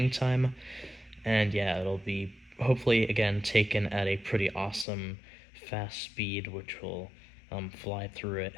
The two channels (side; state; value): right; drops out; at 4.9 s